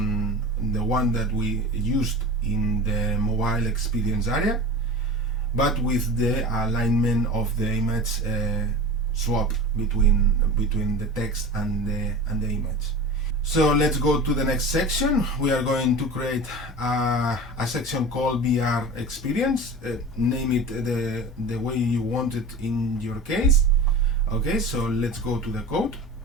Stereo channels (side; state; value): both; normal; correlation 0.33